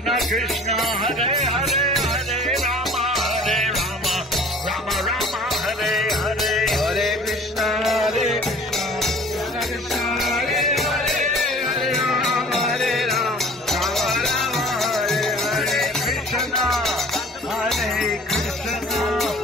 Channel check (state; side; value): normal; both; correlation 0.48